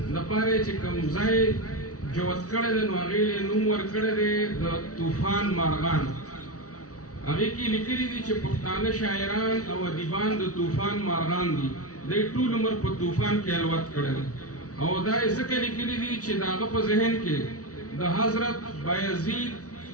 دپاره چې کوم ځای جوت کړی دی نو هغې یې نوم ورکړی دی د طوفان مارغان. هغې کې لیکلي دي چې پښتانه شاعران او ادیبان د طوفان مارغان دي، دوی ټول عمر په طوفان کې الوت کړی دی او دا یې ځکه لیکلي دي چې د هغه په ذهن کې د حضرت بایزید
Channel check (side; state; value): right; late; 0.66 ms